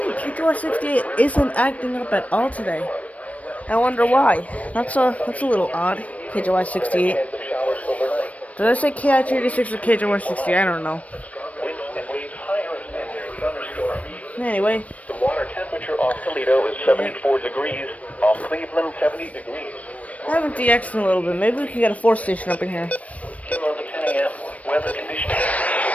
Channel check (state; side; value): late; right; 0.067 ms